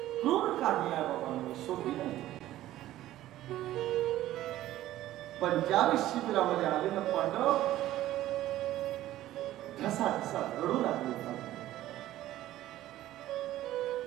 क्रूर कार्य आहे बाबांनो, सोपी नाही. पण ज्यावेळी शिबिरामध्ये आले ना पांडव ठसा ठसा रडू लागले.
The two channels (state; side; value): quieter; left; 14.4 dB